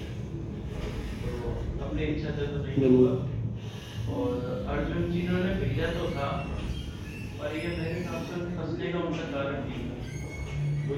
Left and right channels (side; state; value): both; identical; correlation 1.00